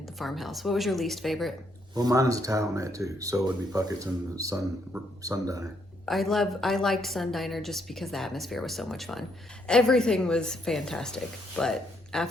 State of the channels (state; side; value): normal; both; correlation 0.73